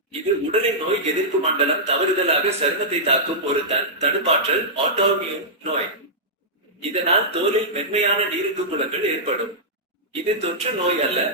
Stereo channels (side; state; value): both; normal; correlation -0.12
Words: இது உடலின் நோய் எதிர்ப்பு மண்டலம் தவறுதலாக சருமத்தை தாக்கும் ஒரு தடுப்பாற்றல் ஆட்டோமியூன் நோய். இதனால் தோலில் மென்மையான நீருக்கு குளங்கள் ஏற்படும். இது தொற்று நோய் அல்ல,